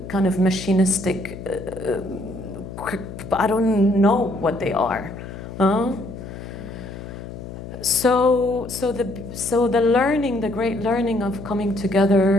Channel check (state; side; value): noise; left; hum, 11 dB below the sound